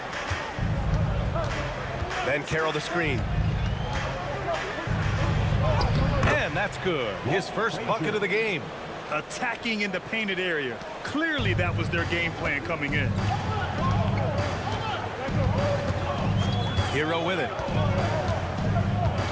Banchero the screen. And that's good. His first bucket of the game. Attacking in the painted area. Clearly that was their game plan coming in. Hero with it.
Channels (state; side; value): identical; both; correlation 1.00